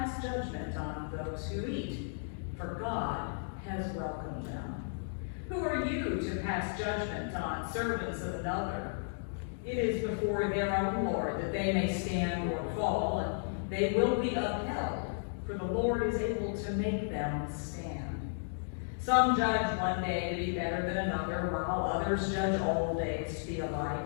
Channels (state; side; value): silent; right; digital silence